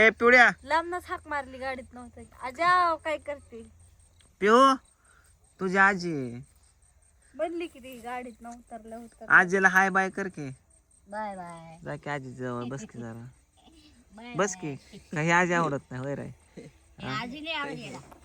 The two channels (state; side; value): identical; both; correlation 1.00